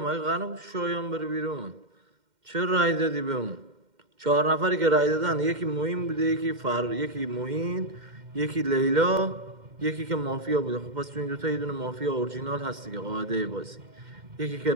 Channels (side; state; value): left; late; 2.1 ms